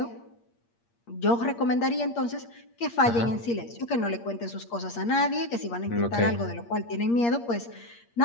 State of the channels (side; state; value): right; late; 8.6 ms